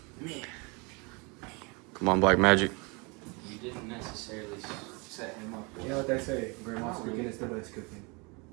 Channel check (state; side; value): quieter; left; 29.7 dB